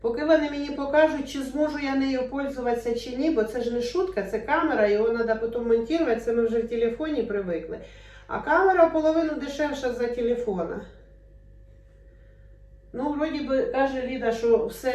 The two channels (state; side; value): identical; both; correlation 1.00